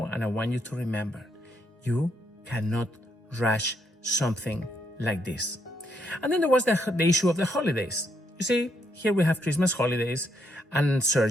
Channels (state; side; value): normal; both; correlation 0.75